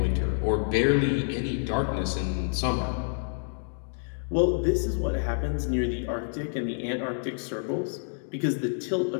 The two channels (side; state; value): right; silent; digital silence